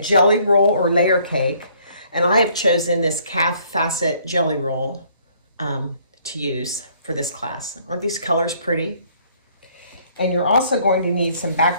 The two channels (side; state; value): both; inverted; correlation -0.62